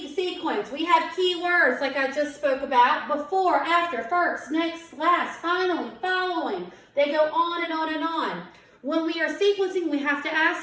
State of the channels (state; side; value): identical; both; correlation 1.00